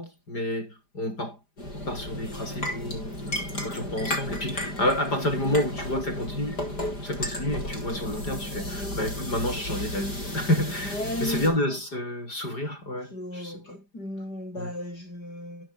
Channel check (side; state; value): right; late; 5.0 ms